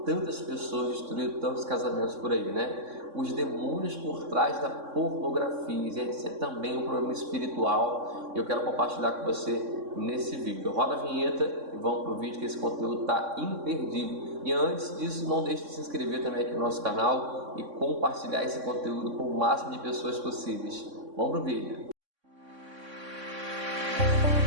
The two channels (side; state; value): left; late; 3.6 ms